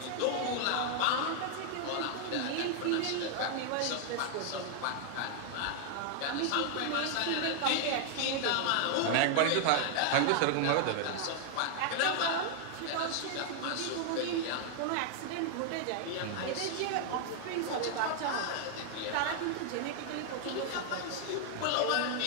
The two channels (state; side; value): different; both; correlation 0.00